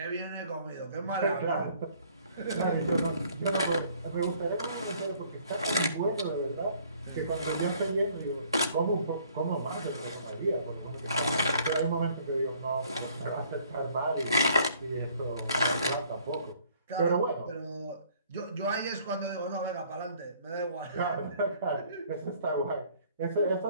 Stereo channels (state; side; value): inverted; both; correlation -0.59